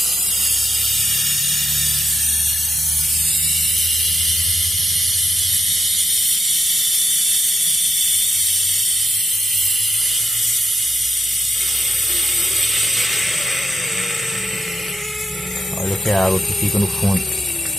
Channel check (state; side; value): normal; both; correlation 0.84